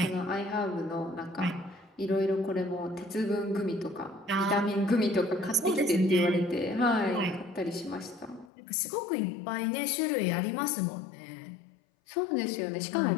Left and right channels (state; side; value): drops out; right; at 8.5 s